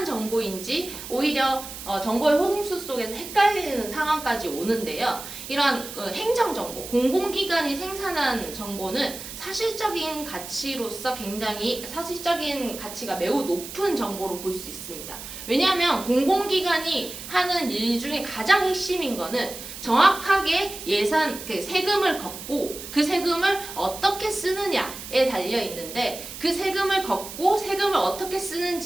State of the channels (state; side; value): noise; right; hiss, 11 dB below the sound